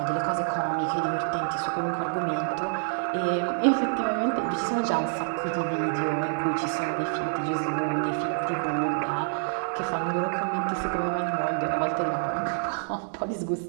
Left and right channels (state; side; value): silent; left; digital silence